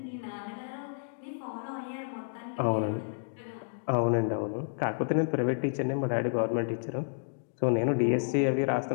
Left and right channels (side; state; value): right; silent; digital silence